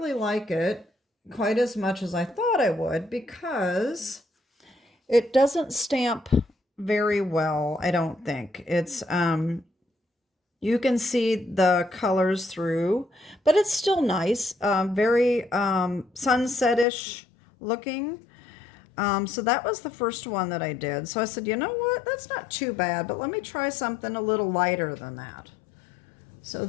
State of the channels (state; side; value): drops out; right; at 16.9 s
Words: like it quite as much as I thought I would because it doesn't stamp very well, I don't think. It's, you can see the colors through, but it's still nice, very sunset-ish looking. So that was the first one that I did. So I said, you know what, that's not too bad, but let me try something a little lighter than that. So